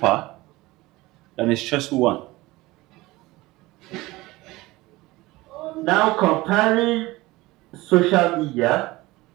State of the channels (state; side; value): quieter; left; 20.0 dB